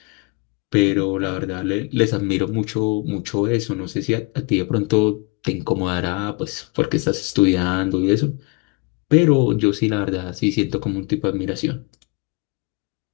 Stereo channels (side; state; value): right; quieter; 28.3 dB